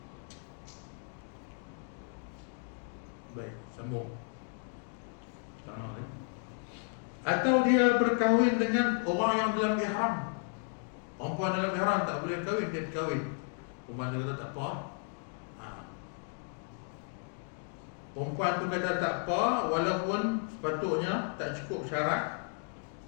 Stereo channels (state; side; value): silent; right; 55 dB below the other